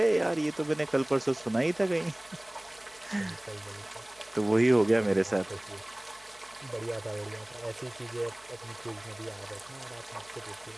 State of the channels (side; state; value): right; noise; hum, 28 dB below the sound